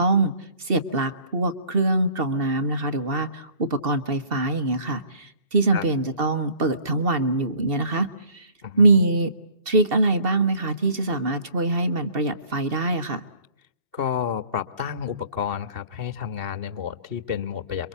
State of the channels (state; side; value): late; left; 2.7 ms